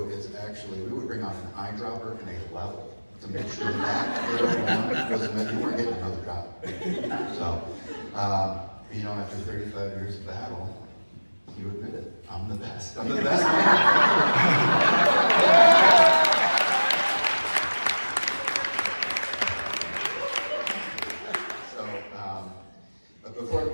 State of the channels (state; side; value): inverted; both; correlation -1.00